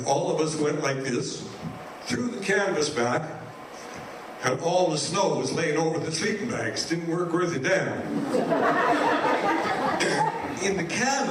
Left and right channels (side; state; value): both; identical; correlation 1.00